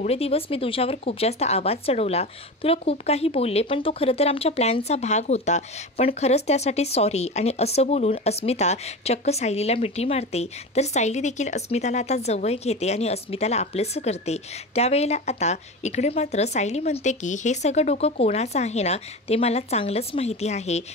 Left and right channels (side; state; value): both; normal; correlation 0.26